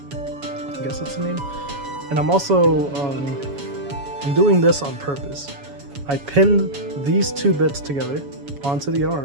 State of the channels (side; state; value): left; late; 7.1 ms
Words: I guess that's the name. And I'm also, I'm doing this on purpose. I pinned these two bits together onto the